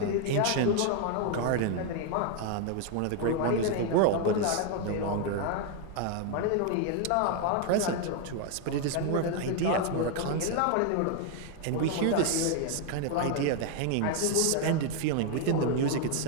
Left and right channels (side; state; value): both; different; correlation 0.01